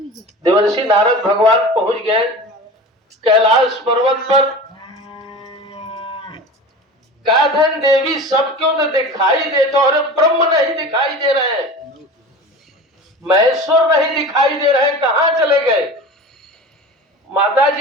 देवर्षि नारद भगवान पहुंच गए कैलाश पर्वत पर। काधन देवी सब क्यों तो दिखाई देते, और ब्रह्म नहीं दिखाई दे रहे हैं, महेश्वर नहीं दिखाई दे रहे हैं, कहां चले गए? माता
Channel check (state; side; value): normal; both; correlation 0.34